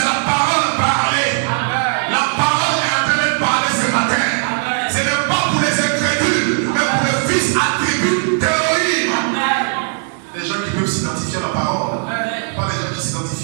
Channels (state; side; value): silent; left; 58 dB below the other